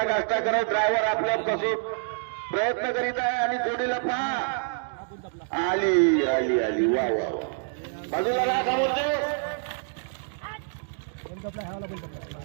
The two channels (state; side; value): silent; left; digital silence